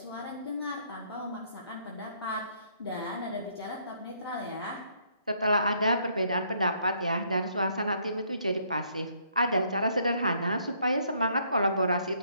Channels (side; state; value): both; inverted; correlation -0.68